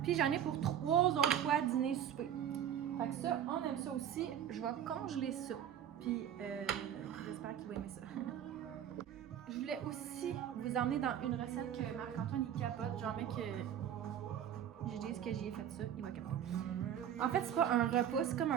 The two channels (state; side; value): quieter; left; 9.8 dB